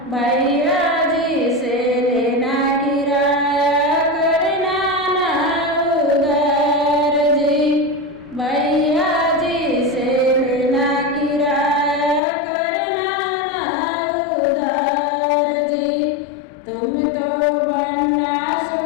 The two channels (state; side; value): drops out; right; at 12.2 s